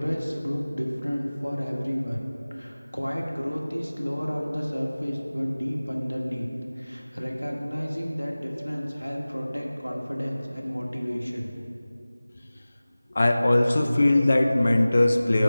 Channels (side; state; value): both; inverted; correlation -0.98